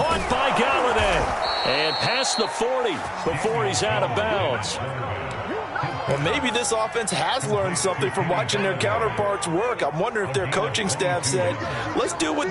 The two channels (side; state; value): both; identical; correlation 1.00